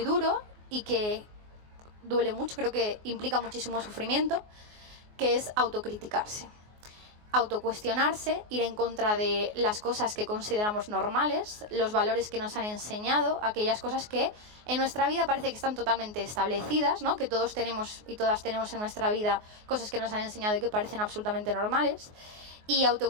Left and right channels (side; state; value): left; late; 24 ms